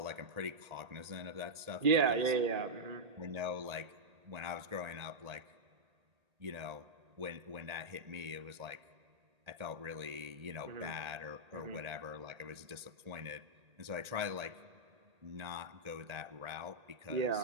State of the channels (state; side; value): late; left; 1.8 ms